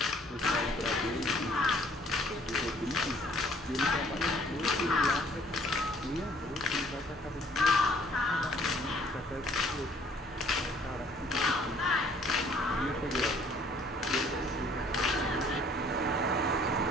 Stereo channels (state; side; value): normal; both; correlation 0.59